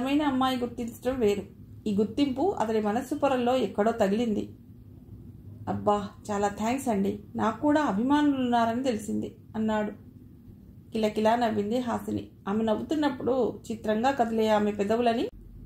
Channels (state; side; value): identical; both; correlation 1.00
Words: అమ్మాయి గుర్తించడం వేరు. ఈ గుర్తింపు అతడి మనస్సు పొరల్లో ఎక్కడో తగిలింది. అబ్బా, చాలా థ్యాంక్స్ అండి, నాకు కూడా అభిమానులున్నారని తెలిసింది అన్నాడు. కిలకిలా నవ్వింది హాసిని. ఆమె నవ్వుతున్నప్పుడు చిత్రంగా కదిలే ఆమె పెదవులని